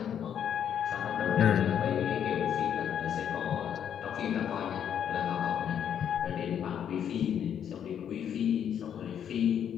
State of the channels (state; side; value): quieter; right; 9.0 dB